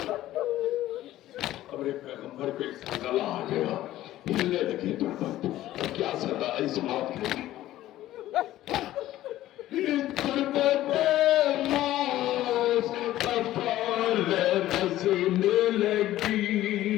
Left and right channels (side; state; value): right; quieter; 14.4 dB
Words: अब एक पैगंबर पे सदा आ गया, हिलने लगी गुरबत। क्या सदा इस बात की गुरबत मौत का फल नज़र लगी,